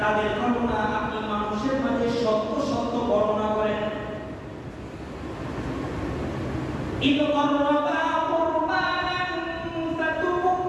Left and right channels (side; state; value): both; identical; correlation 1.00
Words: ঘটনা আপনি মানুষের মাঝে সত্য সত্য বর্ণনা করেন إذ قربا قربانا